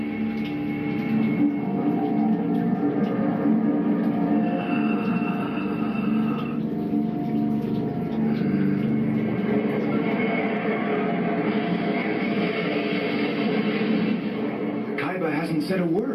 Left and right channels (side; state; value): both; identical; correlation 1.00